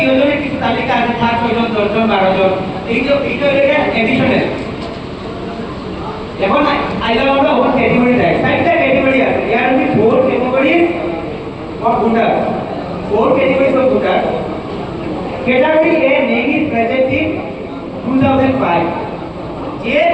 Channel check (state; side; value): identical; both; correlation 1.00